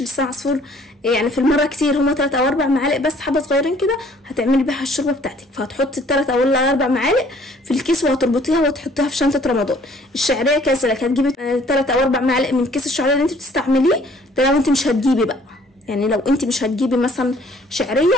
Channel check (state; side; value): normal; both; correlation 0.58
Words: لسان عصفور يعني في المره كتير، هما 3 أو 4 معالق بس، حبه صغيرين كده هتعملي بيها الشوربه بتاعتك، فهتحطي 3 أو 4 معالق في الكيس وهتربطيها وتحطيها في شنطه رمضان. الشعريه كذلك هتجيبي 3 أو 4 معالق من كيس الشعريه اللي انت بتستعمليه ده، لو انت مش هتجيبي بقى، يعني لو انت مش هتجيبي مثلا شعريه